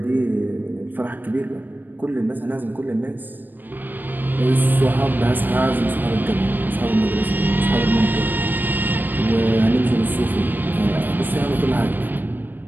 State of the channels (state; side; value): late; left; 0.090 ms